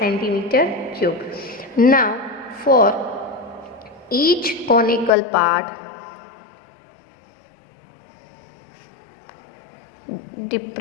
cube. Now for each conical part,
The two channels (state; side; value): drops out; right; at 5.1 s